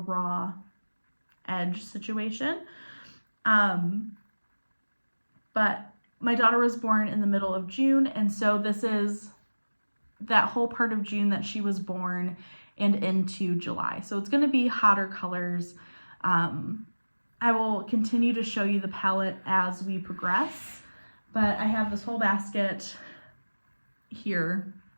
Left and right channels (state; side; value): inverted; both; correlation -1.00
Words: edge situation. But my daughter was born in the middle of June, and so this is that whole part of June that she was born and into July. So it's going to be hotter colors. I will continue to show you the palette as we progress, but I have this whole basket here